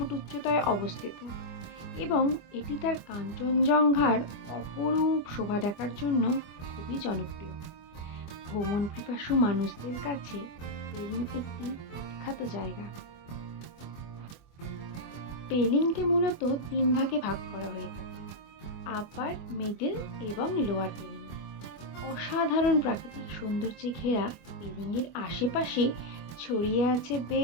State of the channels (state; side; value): late; right; 25 ms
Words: উচ্চতায় অবস্থিত এবং এটি তার কাঞ্চনজঙ্ঘার অপরূপ শোভা দেখার জন্য খুবই জনপ্রিয়। ভ্রমণ পিপাসু মানুষদের কাছে পেলিং একটি বিখ্যাত জায়গা। পেলিংকে মূলত ৩ ভাগে ভাগ করা হয়ে থাকে: আপার, মিডল এবং লোয়ার পেলিং। অসাধারণ প্রাকৃতিক সৌন্দর্যে ঘেরা পেলিংয়ের আশেপাশে ছড়িয়ে আছে